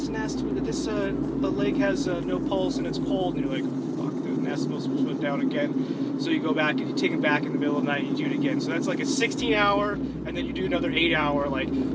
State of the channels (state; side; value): identical; both; correlation 1.00